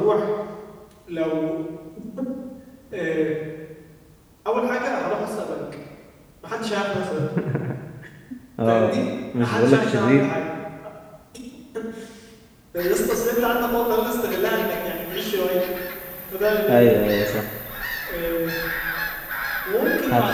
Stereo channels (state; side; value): identical; both; correlation 1.00